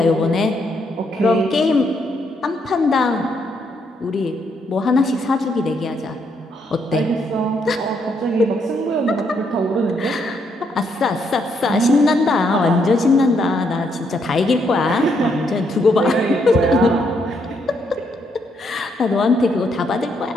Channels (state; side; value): normal; both; correlation 0.75